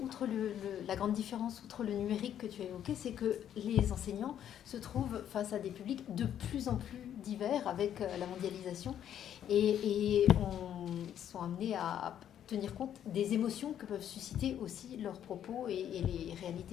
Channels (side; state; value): right; quieter; 10.1 dB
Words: la grande différence, outre le numérique que tu as évoqué, c'est que les enseignants se trouvent face à des publics de plus en plus divers avec la mondialisation et sont amenés à tenir compte des émotions que peuvent susciter aussi leurs propos et les